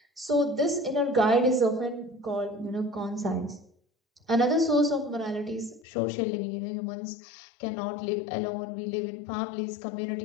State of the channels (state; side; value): drops out; right; at 5.9 s